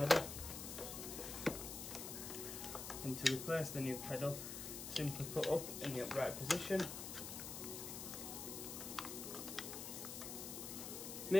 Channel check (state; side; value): noise; left; hiss, 6 dB below the sound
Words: And to replace the new pedal, simply put up in the upright position.